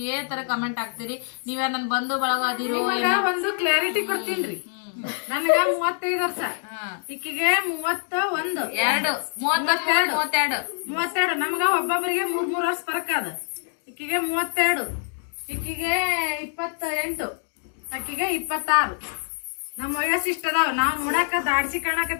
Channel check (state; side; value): silent; right; digital silence